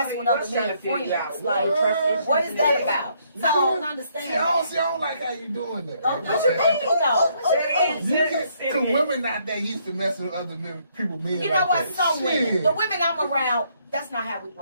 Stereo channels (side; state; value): both; inverted; correlation -0.70